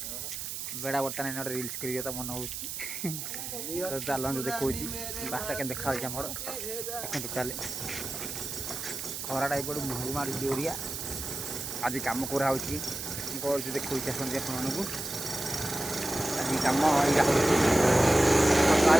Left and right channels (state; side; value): noise; right; hiss, 6 dB below the sound